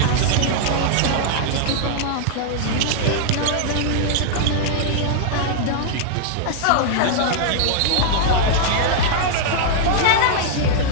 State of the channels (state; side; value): different; both; correlation -0.01